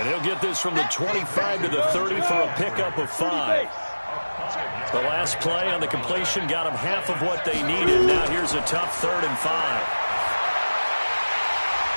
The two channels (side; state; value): both; inverted; correlation -1.00